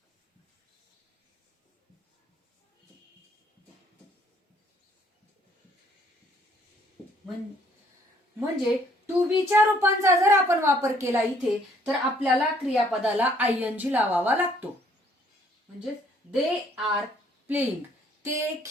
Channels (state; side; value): normal; both; correlation 0.64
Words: म्हणजे टू बीच्या रूपांचा जर आपण वापर केला इथे तर आपल्याला क्रियापदाला ING लावावा लागतो. म्हणजे दे आर प्लेइंग, ते